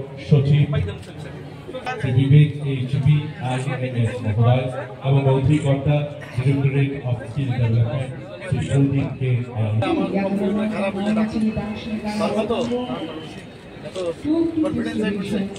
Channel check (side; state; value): both; identical; correlation 1.00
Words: সচিব শ্রী বিবেক HBIAS মহোদয় এবং অধিকর্তা directorate of skill development Shri Pradip